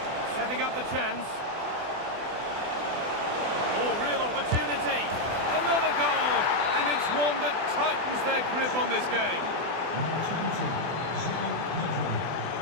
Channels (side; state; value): left; late; 24 ms